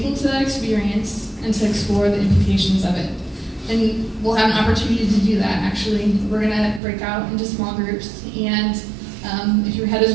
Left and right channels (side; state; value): left; drops out; at 6.8 s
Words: to that experience and to explore the implications of it. And we'll have an opportunity to do that, actually. We're going to break out into small groups, and if your head